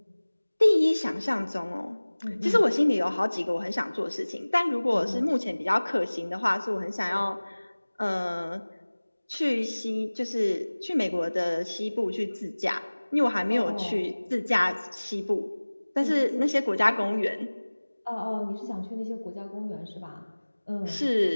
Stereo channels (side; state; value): both; inverted; correlation -1.00